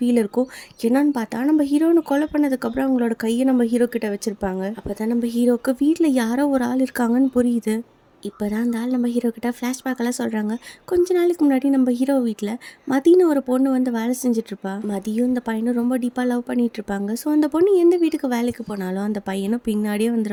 இருக்கும். என்னன்னு பார்த்தா நம்ம ஹீரோனை கொலை பண்ணதுக்கப்புறம் அவங்களோட கையை நம்ம ஹீரோ கிட்ட வச்சிருப்பாங்க. அப்போ தான் நம்ம ஹீரோக்கு வீட்டில் யாரோ ஒரு ஆள் இருக்காங்கன்னு புரியுது. இப்போ தான் அந்த ஆள் நம்ம ஹீரோ கிட்ட ஃப்ளாஷ்பேக்கெல்லாம் சொல்கிறாங்க. கொஞ்ச நாளைக்கு முன்னாடி நம்ம ஹீரோ வீட்டில் மதின்னு ஒரு பொண்ணு வந்து வேலை செஞ்சிட்ருப்பா. மதியும் இந்த பையனும் ரொம்ப டீப்பாக லவ் பண்ணிட்டு இருப்பாங்க. ஸோ அந்த பொண்ணு எந்த வீட்டுக்கு வேலைக்கு போனாலும் அந்த பையனும் பின்னாடியே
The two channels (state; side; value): identical; both; correlation 1.00